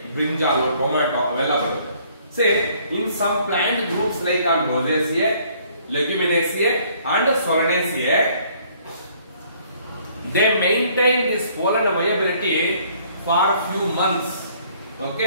ಬ್ರಿಂಜಾಲ್, ಟೊಮ್ಯಾಟೊ ಅವೆಲ್ಲ ಬರುತ್ತೆ. Say in some plant groups like Rosaceae, Leguminosae and Solanaceae, they maintain this pollen viability for few months.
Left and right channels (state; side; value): inverted; both; correlation -0.61